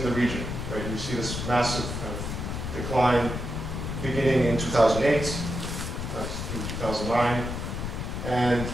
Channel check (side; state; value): left; noise; rumble, 4 dB below the sound